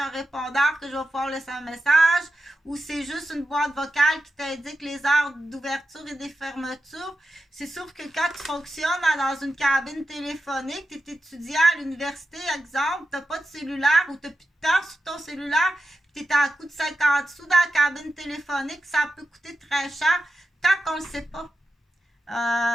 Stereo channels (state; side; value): normal; both; correlation 0.91